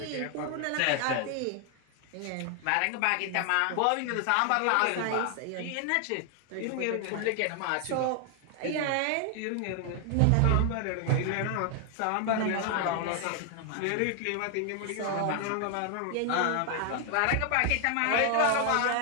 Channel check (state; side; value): different; both; correlation 0.00